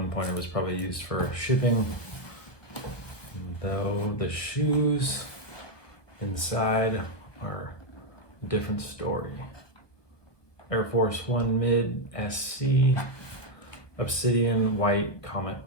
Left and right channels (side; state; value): right; late; 1.2 ms